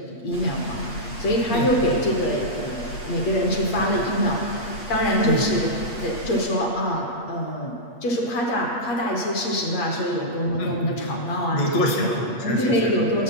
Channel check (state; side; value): late; right; 8.4 ms